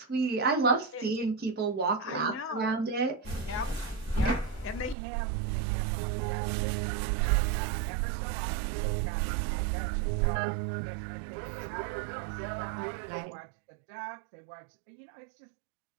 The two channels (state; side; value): drops out; left; at 5.0 s